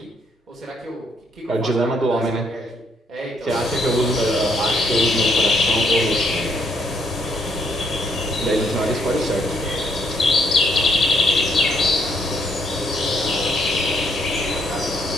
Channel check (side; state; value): both; normal; correlation 0.71